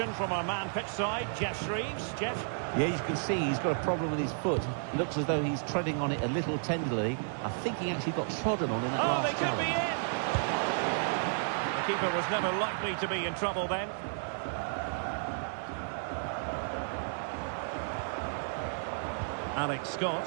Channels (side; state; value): left; silent; 56 dB below the other